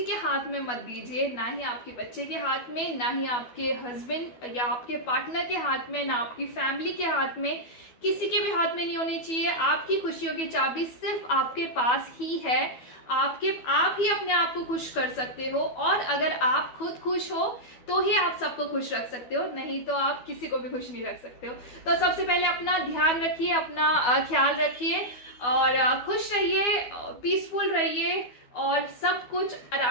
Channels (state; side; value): late; right; 12 ms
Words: के हाथ में मत दीजिए, ना ही आपके बच्चे के हाथ में, ना ही आपके हस्बैंड या आपके पार्टनर के हाथ में, ना आपकी फैमिली के हाथ में, किसी के भी हाथ में नहीं होनी चाहिए। आपकी खुशियों की चाबी सिर्फ आपके पास ही है। आप ही अपने आप को खुश कर सकते हो, और अगर आप खुद खुश हो तो ही आप सबको खुश रख सकते हो, नहीं तो आप किसी को भी खुश नहीं रख सकते हो। तो सबसे पहले अपना ध्यान रखिए, अपना ख्याल रखिए, और खुश रहिए, पीसफुल रहिए, और सब कुछ